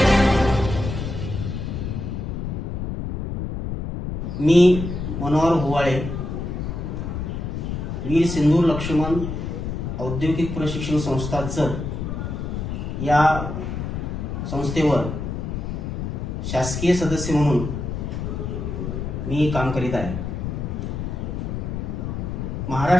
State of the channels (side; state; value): left; noise; rumble, 4 dB below the sound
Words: मी मनोहर हुवाळे, वीर सिंधू लक्ष्मण औद्योगिक प्रशिक्षण संस्था जत या संस्थेवर शासकीय सदस्य म्हणून मी काम करीत आहे।